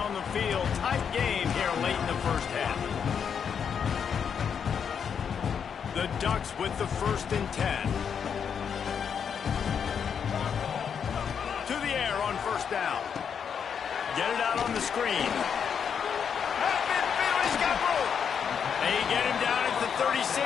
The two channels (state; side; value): quieter; right; 7.3 dB